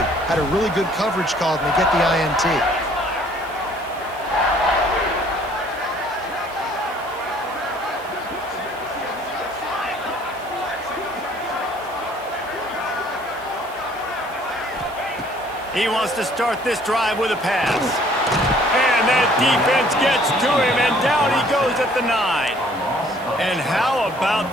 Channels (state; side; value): noise; right; hiss, 24 dB below the sound